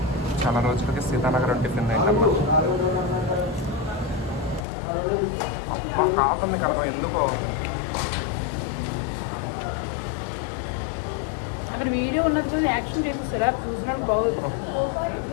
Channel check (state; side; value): drops out; right; at 4.7 s